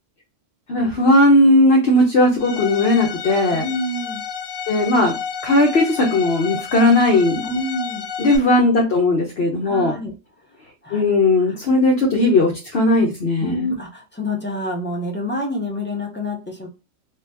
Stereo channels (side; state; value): both; normal; correlation 0.04